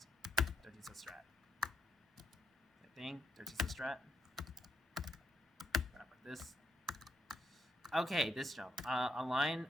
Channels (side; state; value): both; normal; correlation 0.80